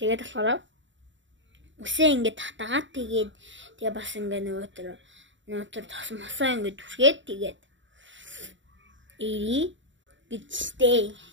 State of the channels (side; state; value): left; late; 0.54 ms